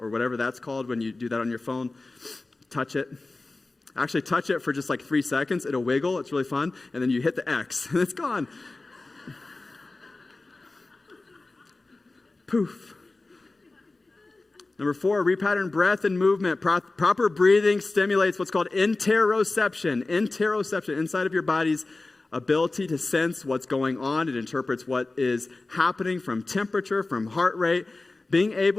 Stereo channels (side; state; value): right; quieter; 3.3 dB